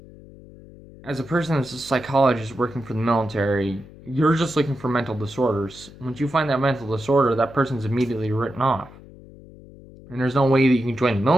a person that's a psychologist working for the military, you're just looking for mental disorders. Once you find that mental disorder, that person's immediately written off. And there's no way that you can join the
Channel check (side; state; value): left; noise; hum, 20 dB below the sound